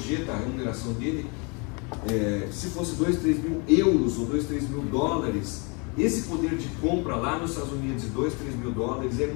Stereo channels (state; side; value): quieter; right; 32.2 dB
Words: a remuneração dele, se fosse 2, 3 mil euros ou 2, 3 mil dólares, esse poder de compra lá nos Estados Unidos de 2, 3 mil dólares é